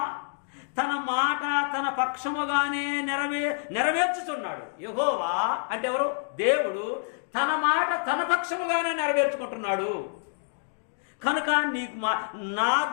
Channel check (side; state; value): right; silent; digital silence